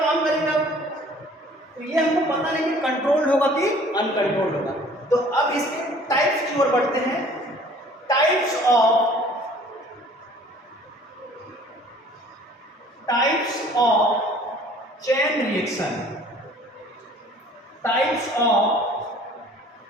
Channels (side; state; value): both; normal; correlation 0.52